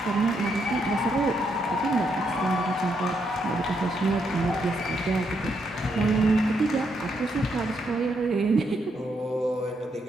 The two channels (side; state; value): both; normal; correlation 0.77